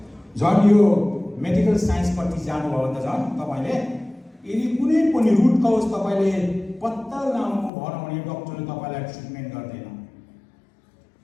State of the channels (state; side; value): drops out; right; at 7.7 s